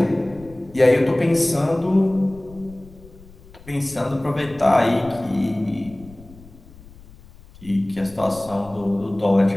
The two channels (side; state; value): left; noise; rumble, 21 dB below the sound